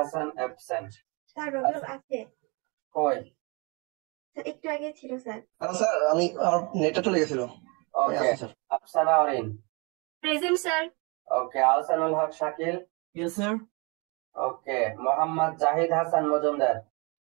অ্যাবসেন্ট। স্যার রবিউল আছে কই? স্যার একটু আগে ছিল স্যার। স্যার আমি আমার নেটটা চলে গেছিল। Okay. Afsana Orin present sir. Okay. Ahsanul Haque Shakil yes sir. Okay. Mohammad Zahid Hasan Majumdar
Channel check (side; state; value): left; quieter; 30.1 dB